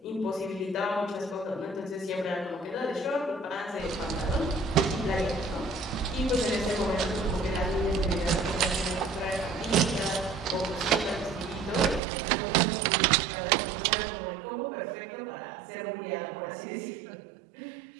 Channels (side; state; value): left; drops out; at 12.0 s